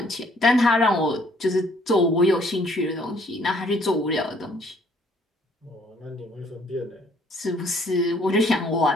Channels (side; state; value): both; normal; correlation 0.63